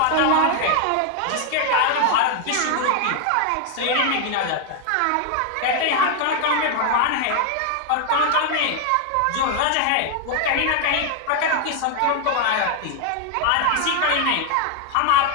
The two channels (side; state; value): both; different; correlation 0.00